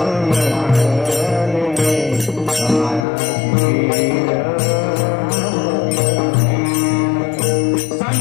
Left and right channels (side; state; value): right; drops out; at 3.1 s